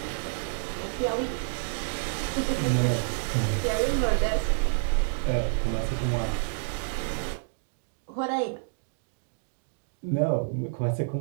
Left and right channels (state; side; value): silent; left; digital silence